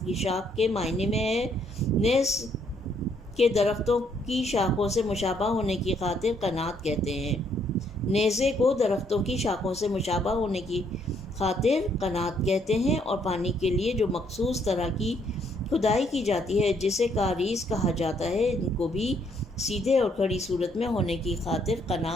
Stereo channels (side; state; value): both; normal; correlation 0.69